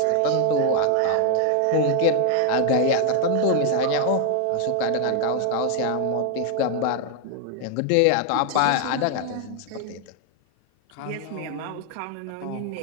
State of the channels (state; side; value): different; both; correlation 0.00